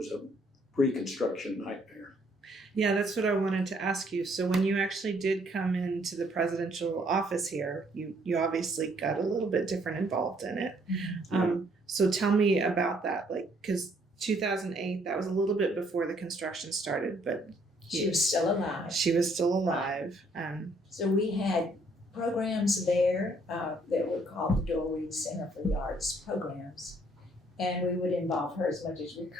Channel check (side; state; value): both; normal; correlation 0.66